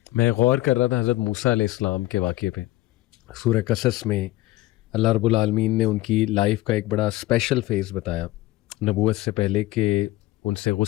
میں غور کر رہا تھا حضرت موسیٰ علیہ السلام کے واقعے پہ. سورہ قصص میں اللہ رب العالمین نے ان کی لائف کا ایک بڑا اسپیشل فیز بتایا نبوت سے پہلے، کہ ان سے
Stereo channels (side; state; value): right; quieter; 17.6 dB